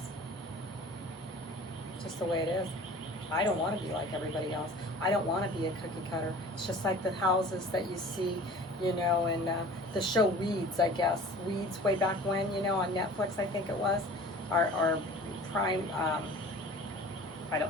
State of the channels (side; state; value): both; normal; correlation 0.43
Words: It's just the way it is. I don't want to be like everybody else. I don't want to be a cookie cutter. It's just like the houses that you see, in the show Weeds, I guess. Weeds way back when, on Netflix, I think it was. Or Prime, I